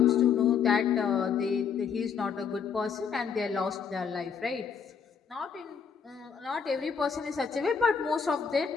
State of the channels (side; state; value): right; quieter; 6.6 dB